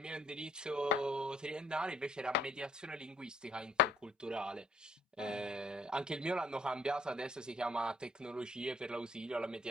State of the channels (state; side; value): normal; both; correlation 0.61